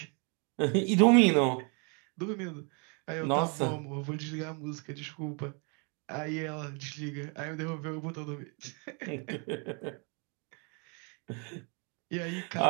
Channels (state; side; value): quieter; left; 35.0 dB